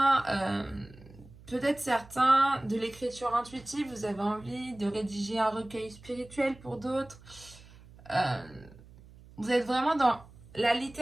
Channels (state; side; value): noise; right; hum, 22 dB below the sound